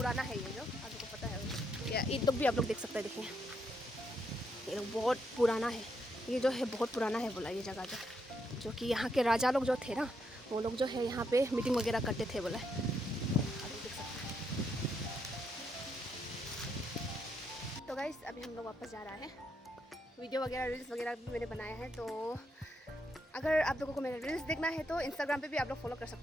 है ये जो, आप लोग को पता है। या ईद लोग भी आप लोग देख सकते हैं, देखिए ये लोग बहुत पुराना है, ये जो है बहुत पुराना है बोला ये जगह जो कि यहाँ के राजा लोग जो थे ना, वो लोग जो है यहाँ पे मीटिंग वगैरह करते थे बोला है। आप लोग देख सकते हैं। तो गाइस अभी हम लोग वापस जा रहा है। वीडियो वगैरह रील्स वगैरह भी मैंने बनाया है, तो अगर आप लोगों को मेरे रील्स देखना है तो इंस्टाग्राम पे भी आप लोग फॉलो कर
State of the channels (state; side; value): normal; both; correlation 0.77